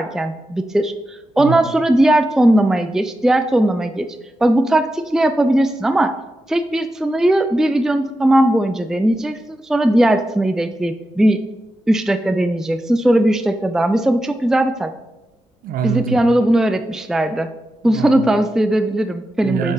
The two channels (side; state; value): both; normal; correlation 0.90